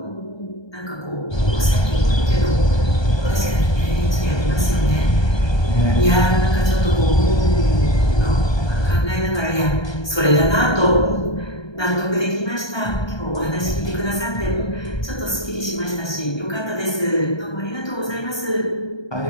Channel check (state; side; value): late; right; 1.2 ms